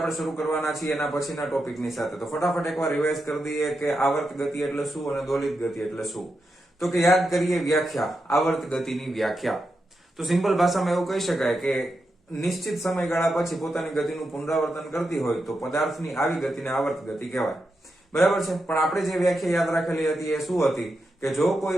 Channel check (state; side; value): normal; both; correlation 0.87